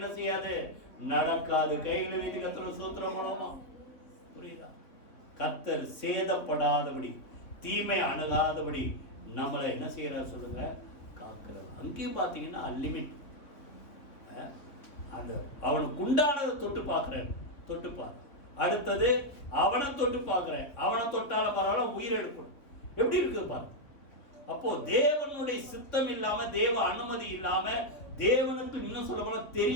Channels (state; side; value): late; right; 3.4 ms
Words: செய்யாது, நடக்காது. கையில வீட்டு கர்த்தர் சூத்திரம் மூலமா புரியுதா? கர்த்தர் சேதப்படாதபடி தீமை அணுகாதபடி நம்மளை என்ன செய்யறாரு சொல்லுங்க, காக்கிறார். அங்கேயும் பாத்தீங்கன்னா லிமிட். அந்த அவனுக்கு உண்டானதை தொட்டு பார்க்கிறேன், தொட்டுப்பார். அடுத்தது அவனை தொட்டு பார்க்கிறேன், அவனை தொட்டால பரவாயில்ல உயிர் எடுக்கணும். எப்படி இருக்கு பாரு. அப்போ தேவனுடைய சித்தம் இல்லாம, தேவ அனுமதி இல்லாம, தேவனுக்கு இன்னும் சொல்ல போனா